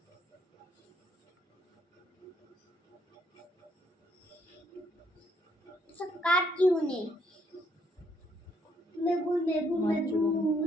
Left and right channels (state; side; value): normal; both; correlation 0.71